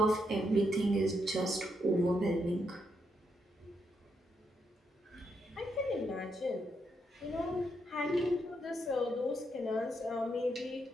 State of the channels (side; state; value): both; normal; correlation 0.79